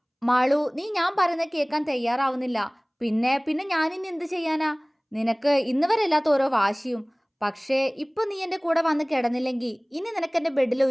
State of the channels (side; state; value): both; identical; correlation 1.00